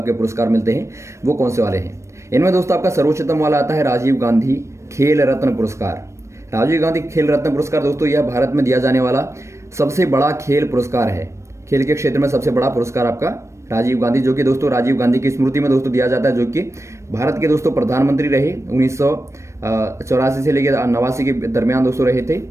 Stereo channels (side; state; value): left; late; 0.14 ms